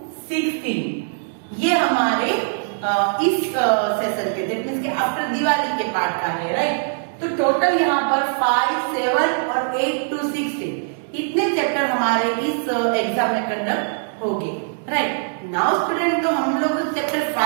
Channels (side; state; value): left; silent; digital silence